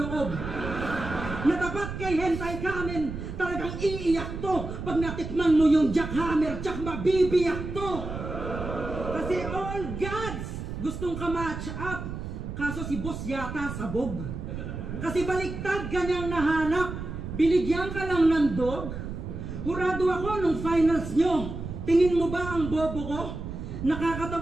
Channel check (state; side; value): noise; right; rumble, 7 dB below the sound